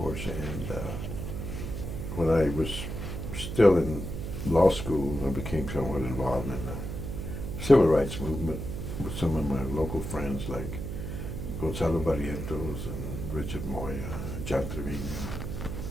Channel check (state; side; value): noise; right; hum, 5 dB below the sound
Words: And when I was still in law school, I became somewhat involved in the civil rights movement with some of my local friends like Gonzalo Barrientos and Richard Moya, John Trevino,